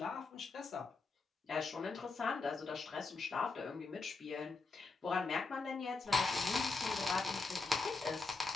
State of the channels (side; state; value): right; quieter; 3.9 dB